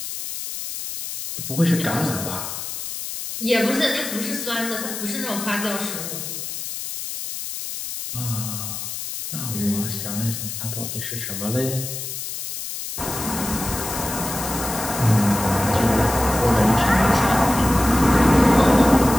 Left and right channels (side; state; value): left; noise; hiss, 7 dB below the sound